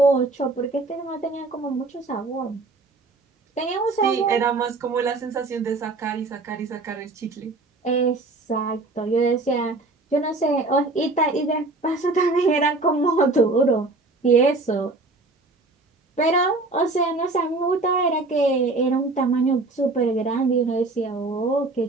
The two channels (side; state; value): left; quieter; 3.3 dB